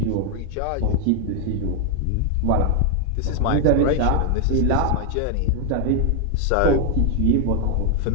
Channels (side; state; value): both; different; correlation 0.00